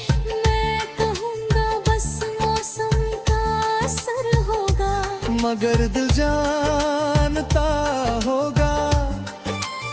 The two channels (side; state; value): both; identical; correlation 1.00